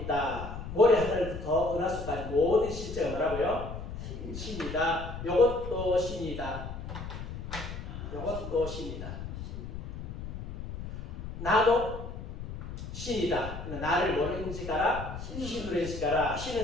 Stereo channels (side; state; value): left; noise; rumble, 8 dB below the sound